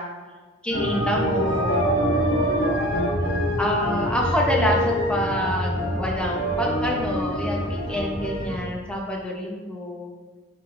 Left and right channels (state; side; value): normal; both; correlation 0.42